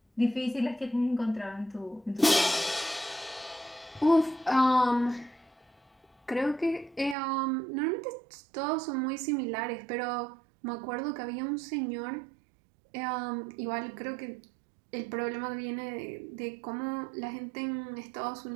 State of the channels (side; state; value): left; drops out; at 7.2 s